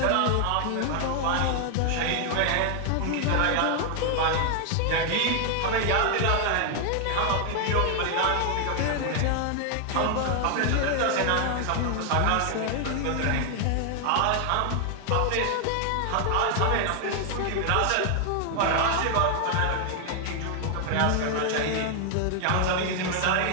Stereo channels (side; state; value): both; different; correlation 0.00